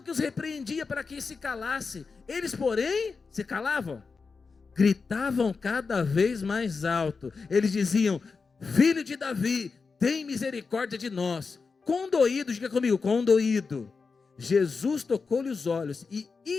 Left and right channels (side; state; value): right; quieter; 4.8 dB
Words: que os repreendia para que se calasse, eles porém se calavam, gritavam cada vez mais alto. Eles diziam: filho de Davi, tem misericórdia de nós. Condoído, diga comigo, condoído. Jesus tocou-lhe os olhos e